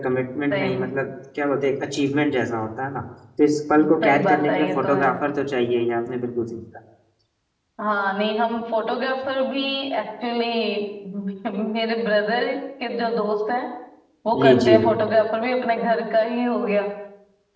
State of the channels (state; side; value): identical; both; correlation 1.00